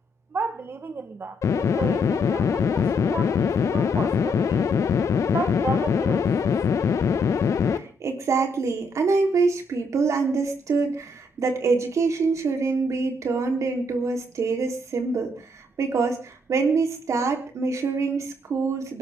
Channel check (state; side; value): normal; both; correlation 0.73